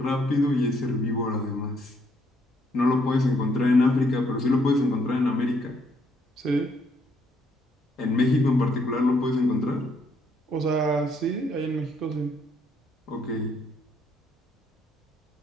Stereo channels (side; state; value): both; normal; correlation 0.70